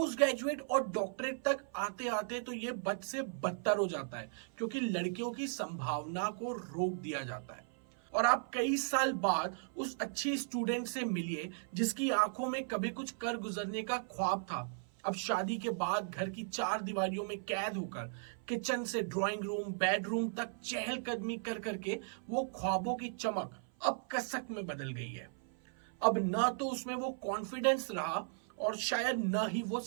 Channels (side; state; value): left; silent; 53 dB below the other